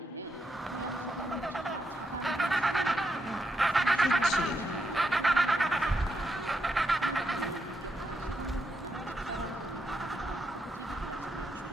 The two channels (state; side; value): normal; both; correlation 0.82